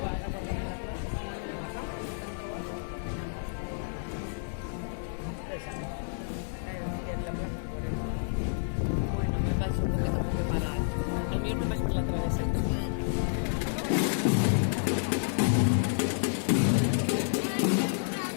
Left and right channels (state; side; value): silent; right; digital silence